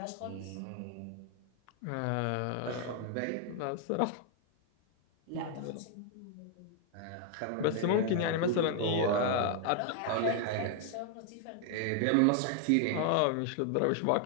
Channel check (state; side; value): different; both; correlation 0.00